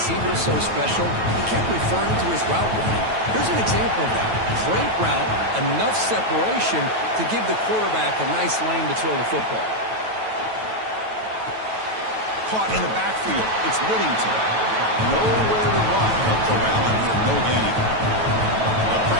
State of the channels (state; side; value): late; left; 9.2 ms